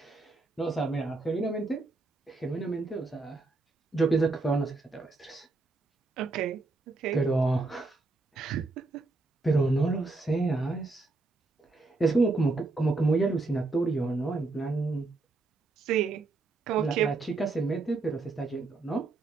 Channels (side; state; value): left; quieter; 3.4 dB